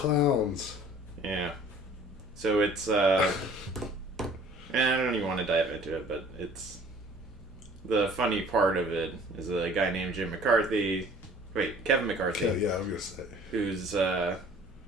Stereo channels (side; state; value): both; normal; correlation 0.51